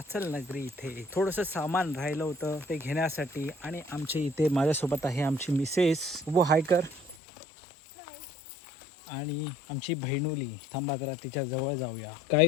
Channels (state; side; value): drops out; right; at 7.2 s